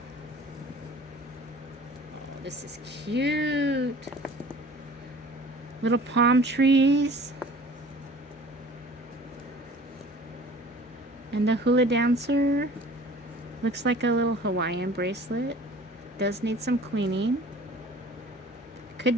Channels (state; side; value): normal; both; correlation 0.46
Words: this is cute. Little palm trees. And a hula dancer. Looks like a little Hawaiian bracelet. Does need some cleaning. Could